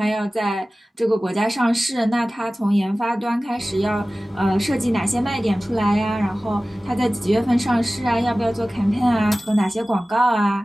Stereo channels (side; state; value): both; normal; correlation 0.97